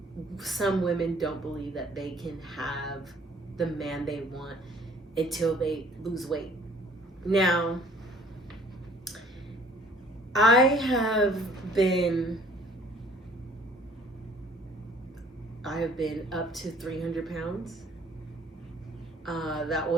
some women don't believe that they can have the man they want until they lose weight. Now, I have been up to 300 pounds. That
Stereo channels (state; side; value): normal; both; correlation 0.56